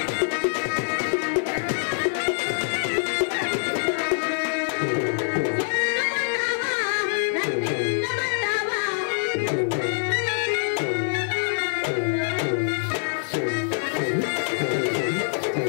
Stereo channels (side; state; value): right; silent; 62 dB below the other